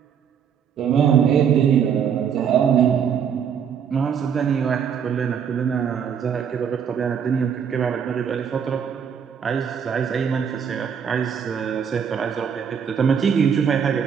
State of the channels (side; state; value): left; quieter; 7.6 dB